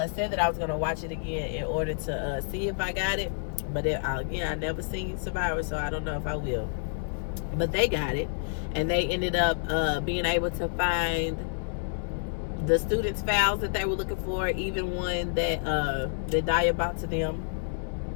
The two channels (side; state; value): right; silent; digital silence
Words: said that I was going to watch it again in order to see if I got it. But again, I never seen Survivor, so I don't know if I will. But they got it, and they ended up being able to find the students' files that they were looking for, even one that Daya brought to them